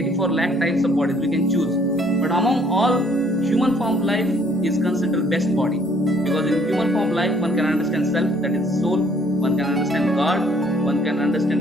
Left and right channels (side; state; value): both; normal; correlation 0.62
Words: lakh types of bodies we can choose. But among all, human form life is considered best body, because in human form life one can understand self, that is soul, one can understand God, one can